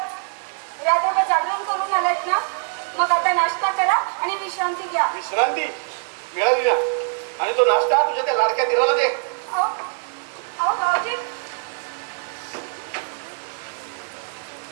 रात्रभर जागरण करून आलात ना, मग आता नाश्ता करा आणि विश्रांती घ्या. विश्रांती मिळाली ना, आणि तो नाश्ता तुझ्या त्या लाडक्या दिराला दे. अहो, अहो भाऊजी,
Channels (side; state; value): left; silent; 62 dB below the other